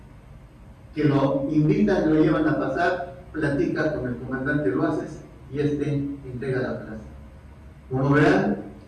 que lo invitan, lo llevan a pasar, platica con el comandante Loaces y este entrega la plaza. Como verán,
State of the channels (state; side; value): identical; both; correlation 1.00